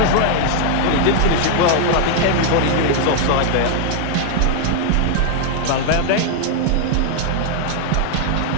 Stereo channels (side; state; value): both; different; correlation 0.00